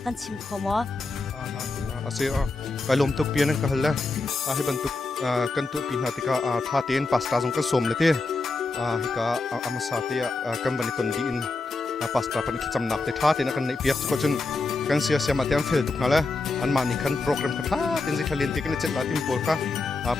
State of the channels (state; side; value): quieter; right; 3.5 dB